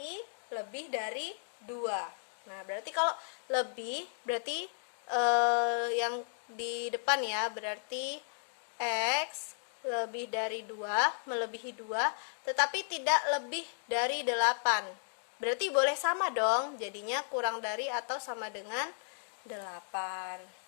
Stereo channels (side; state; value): right; silent; digital silence